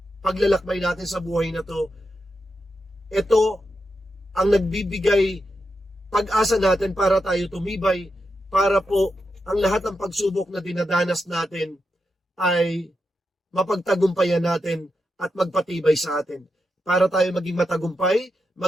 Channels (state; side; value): normal; both; correlation 0.86